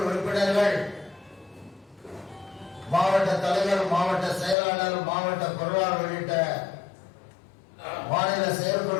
உறுப்பினர்கள், மாவட்ட தலைவர், மாவட்ட செயலாளர், மாவட்ட பொருளாளர் உள்ளிட்ட மாநில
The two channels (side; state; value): right; drops out; at 4.5 s